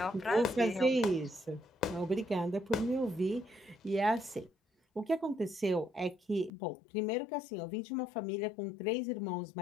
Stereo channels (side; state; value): right; drops out; at 6.5 s